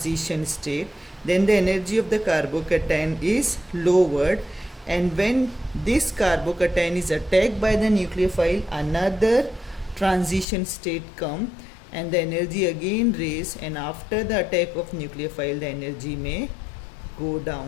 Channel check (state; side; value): drops out; right; at 10.5 s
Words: state. Then the energy of the carbocation is lowered, and when this carbocation is attacked by the nucleophile, another transition state come and the energy again raise, and after the attack of nucleophile the energy may go